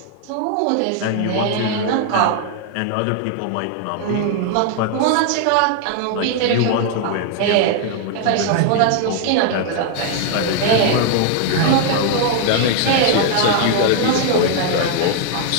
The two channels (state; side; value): different; both; correlation 0.00